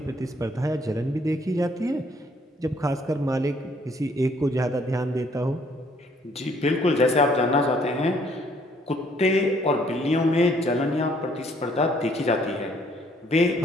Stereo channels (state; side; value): normal; both; correlation 0.64